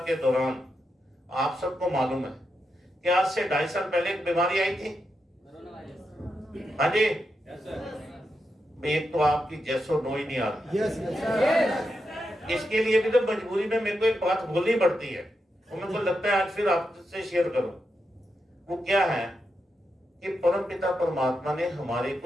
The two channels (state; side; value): normal; both; correlation 0.86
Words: दौरान आप सबको मालूम है कि आज से 2.5 साल पहले एक बीमारी आई थी। हाँ जी, एक तो आपकी जैसो नो ही नहीं आ रही। इसके लिए भी तो मजबूरी में मेरे को एक बात बोलनी पड़ती है और मेरे को लगता है आज फिर आपसे शेयर करूं। वो क्या है कि परम पिता परमात्मा ने हमारे